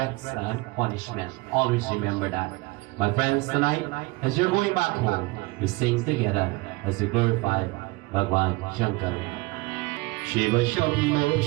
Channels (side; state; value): left; quieter; 23.5 dB